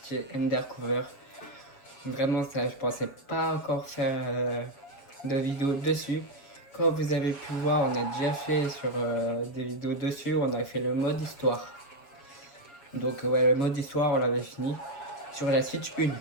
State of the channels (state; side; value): late; right; 7.2 ms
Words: Undercover. Vraiment ça, je pensais pas encore faire de vidéo dessus. Comme vous avez pu voir, on a déjà fait sur des vidéos dessus, on a fait le mode histoire. Donc ouais, le mode histoire on l'avait fini sur la Switch 1,